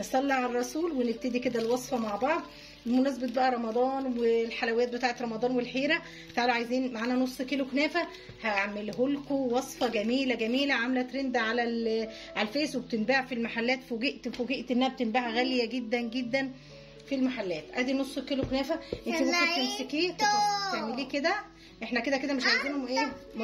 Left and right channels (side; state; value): both; identical; correlation 1.00